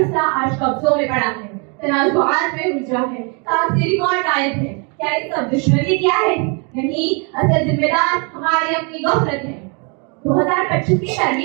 آج قبضوں میں پڑا ہے، تنازعات میں الجھا ہے، کاغذی ریکارڈ غائب ہے. کیا یہ سب دشمنی کیا ہے؟ نہیں، اصل ذمہ دار ہماری اپنی غفلت ہے. 2025 کی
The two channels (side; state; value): left; quieter; 34.6 dB